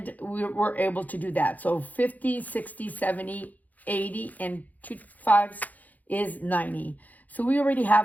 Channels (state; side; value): late; right; 0.080 ms